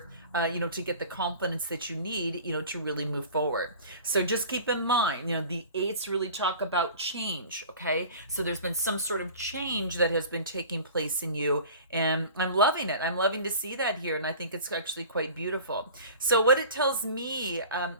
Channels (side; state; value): both; inverted; correlation -0.41